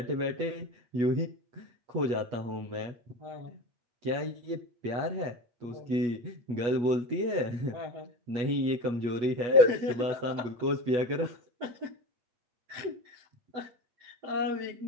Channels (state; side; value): late; left; 8.3 ms